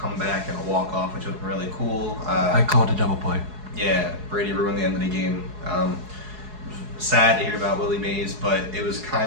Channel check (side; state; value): left; late; 4.7 ms